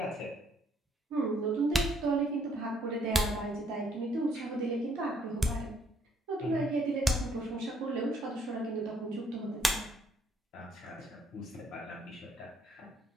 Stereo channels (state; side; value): normal; both; correlation 0.67